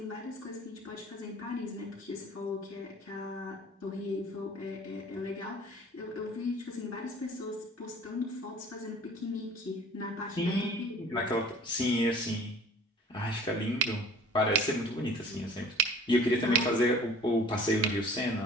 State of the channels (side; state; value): both; normal; correlation 0.48